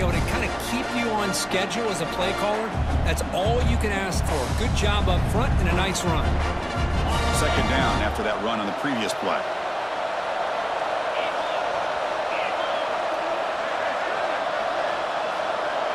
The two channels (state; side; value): identical; both; correlation 1.00